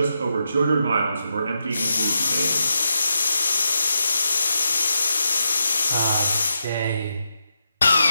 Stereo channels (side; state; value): both; inverted; correlation -0.84